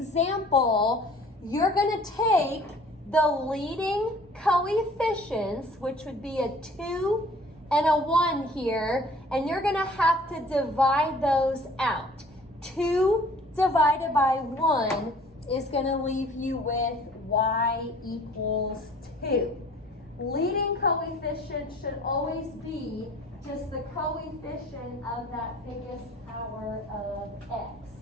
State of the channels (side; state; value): both; normal; correlation 0.51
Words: You're going to take the leading coefficients, which would be a 2 and a 1 here, and you're going to have to divide those out. 2 divided by 1 is going to leave you with y equals 2. Leading coefficient should always be just the coefficient of that biggest power of x.